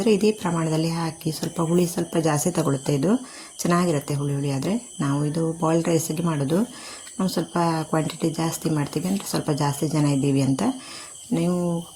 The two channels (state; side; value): identical; both; correlation 1.00